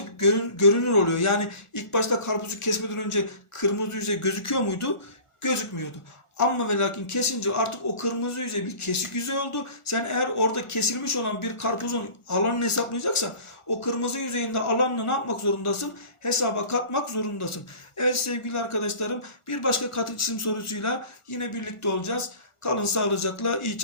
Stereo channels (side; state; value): right; late; 1.4 ms